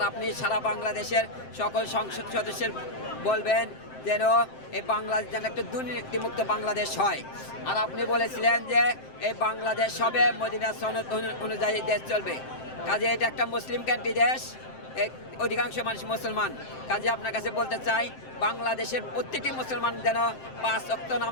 আপনি সারা বাংলাদেশের সকল সংসদ সদস্যের বলবেন যেন এই বাংলাদেশ যেন একটা দুর্নীতিমুক্ত বাংলাদেশ হয়। আর আপনি বলেছিলেন যে এই বাংলাদেশ হবে মদিনা সনদ অনুযায়ী দেশ চলবে। কাজে এটা একটা মুসলিম কান্ট্রি দেশ, অধিকাংশ মানুষ মুসলমান। কাজে আপনার কাছে বলতে চাই বাংলাদেশের প্রত্যেকটি মুসলমান যেন 5 ওয়াক্ত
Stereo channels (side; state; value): right; late; 7.7 ms